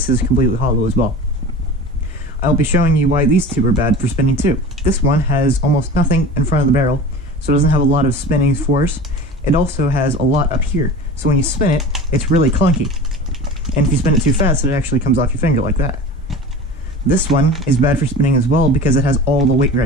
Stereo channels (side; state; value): both; normal; correlation 0.35